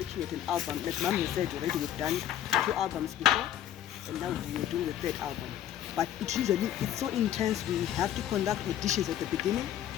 at an album. Like Mom has said already, we've done 2 albums before, and now we're doing the 3rd album. But it's so intense. We have to conduct auditions at the beginning,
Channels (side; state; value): right; quieter; 11.3 dB